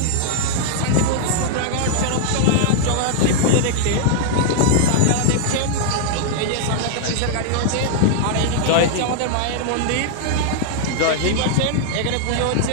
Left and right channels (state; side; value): different; both; correlation -0.01